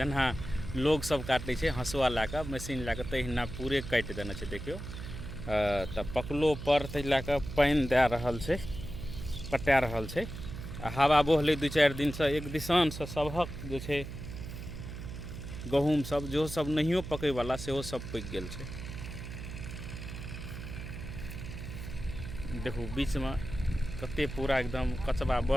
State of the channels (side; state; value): right; noise; hum, 9 dB below the sound